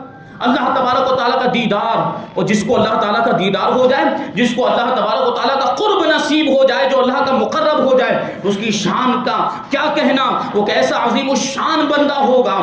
اللہ تبارک و تعالیٰ کا دیدار، اور جس کو اللہ تعالیٰ کا دیدار ہو جائے، جس کو اللہ تبارک و تعالیٰ کا قرب نصیب ہو جائے، جو اللہ کا مقرب ہو جائے، اس کی شان کا کیا کہنا، وہ کیسا عظیم الشان بندہ ہوگا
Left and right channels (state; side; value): identical; both; correlation 1.00